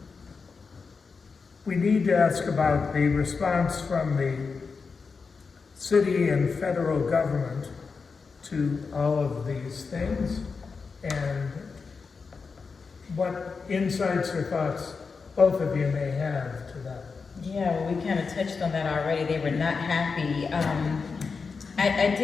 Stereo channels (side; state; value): right; quieter; 4.9 dB